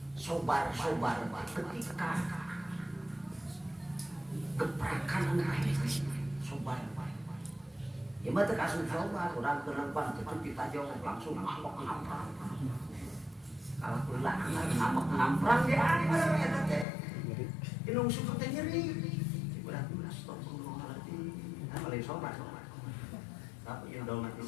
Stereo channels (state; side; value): drops out; right; at 16.9 s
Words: sobar ketika gebrakan anak sobar ya mah teh kasus sobar urang teu leumpang teu ditajong langsung ngambek ngamprang kalau ulah ngambek ngamprang ge anger eta teh inung suku teh nyeri berarti astagfirullahaladzim malih sobar tapi yang dalam hati